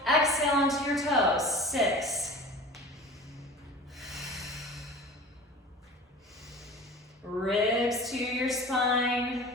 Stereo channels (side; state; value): both; normal; correlation 0.38